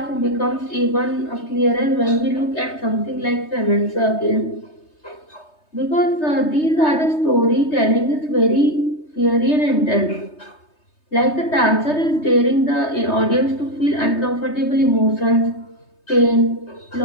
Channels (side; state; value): right; late; 3.2 ms